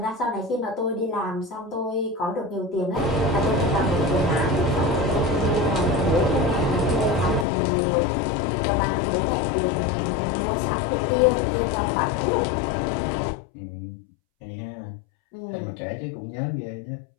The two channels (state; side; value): drops out; right; at 7.5 s